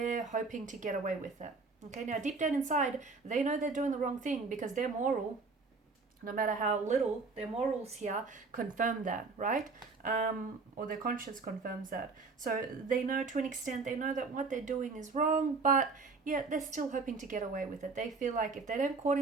hoping to get away with it. Okay, now deep down inside, they know they're doing the wrong thing, because their moral, no matter how little, their morals here confirm that, right? Or their conscience confirms that. So they know, to an extent, they know that what they're doing is wrong, but yet they're still hoping to get away with it. They feel like if they don't caught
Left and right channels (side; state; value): left; quieter; 4.2 dB